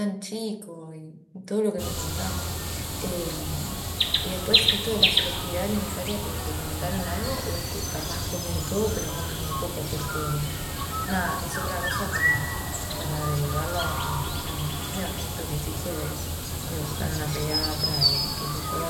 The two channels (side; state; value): both; identical; correlation 1.00